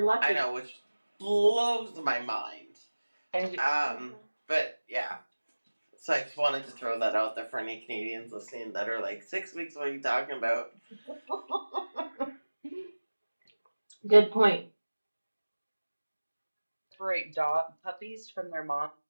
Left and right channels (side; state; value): both; inverted; correlation -1.00